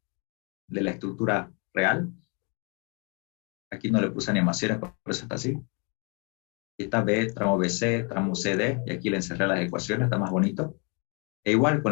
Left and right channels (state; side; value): quieter; right; 35.0 dB